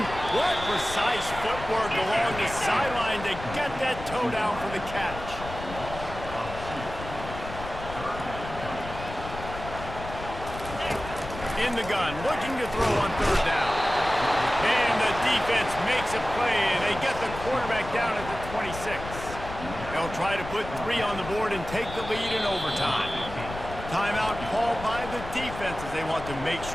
What precise footwork along the sideline to get that toe down for the catch. In the gun, looking to throw on third down. And the defense makes a play, and they get the quarterback down at the 26. They'll try to put 3 on the board and take the lead in overtime. Timeout called by the defense as they want to make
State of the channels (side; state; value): left; noise; rumble, 11 dB below the sound